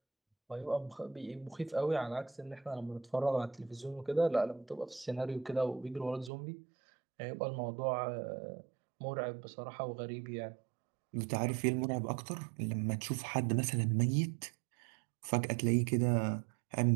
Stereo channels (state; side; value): drops out; left; at 6.3 s